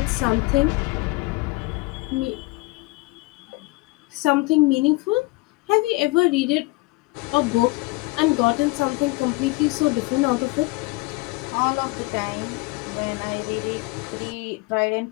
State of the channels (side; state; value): right; quieter; 24.0 dB